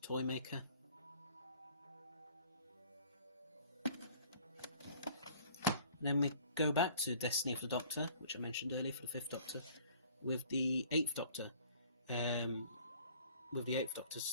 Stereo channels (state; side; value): inverted; both; correlation -0.53